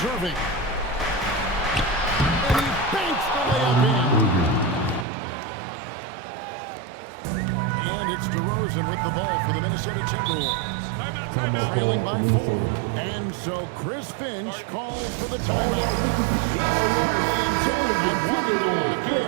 Irving. DeRozan with the ball for the Minnesota Timberwolves. Trailing by 4. And so Chris Finch calls for the timeout. He's clearly intent on wanting to lock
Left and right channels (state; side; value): drops out; left; at 5.1 s